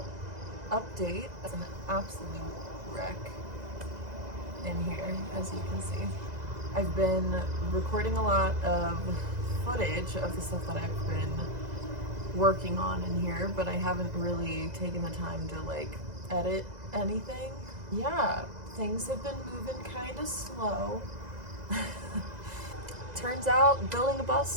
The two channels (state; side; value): late; left; 2.0 ms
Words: update. It's an absolute wreck in here, as you can see. I've been recording a lot of footage of the stuff that I've been working on in here, but I haven't really taken the time to like edit anything. Yeah, things have been moving kind of slow. Turns out building a